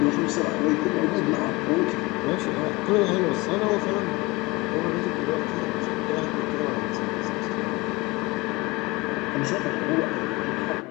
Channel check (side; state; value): right; quieter; 23.4 dB